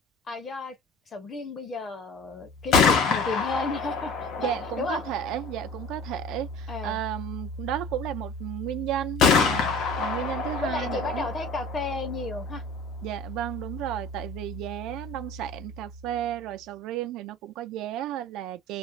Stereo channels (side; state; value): both; normal; correlation 0.41